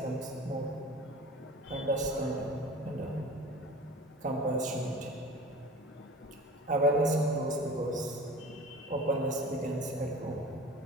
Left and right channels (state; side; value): normal; both; correlation 0.38